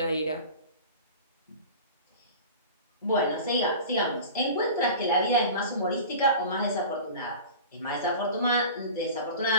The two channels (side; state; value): both; inverted; correlation -0.36